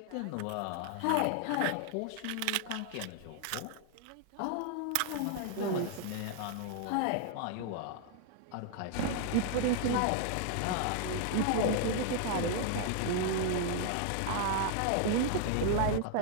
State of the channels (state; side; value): different; both; correlation 0.00